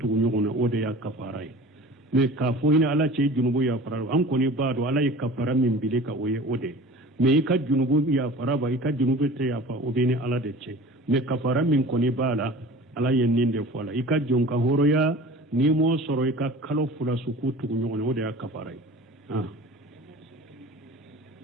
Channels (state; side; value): normal; both; correlation 0.40